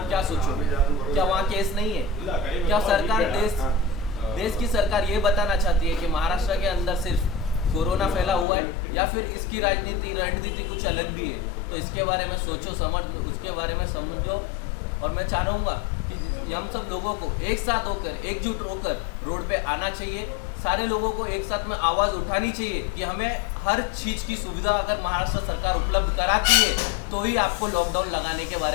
क्या सोचोगे? क्या वहाँ केस नहीं है? क्या सरकार देश की सरकार ये बताना चाहती है कि महाराष्ट्र के अंदर सिर्फ कोरोना फैला हुआ है, या फिर इसकी रणनीति कुछ अलग भी है? तो इसके बारे में सोचो, उसके बारे में समझो। और मैं चाहूँगा कि हम सब लोगों को एक साथ होकर, एकजुट होकर रोड पे आना चाहिए। सारे लोगों को एक साथ में आवाज़ उठानी चाहिए कि हमें हर चीज़ की सुविधा अगर महाराष्ट्र सरकार उपलब्ध कराती है तो ही आपको लॉकडाउन लगाने के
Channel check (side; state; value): right; drops out; at 8.5 s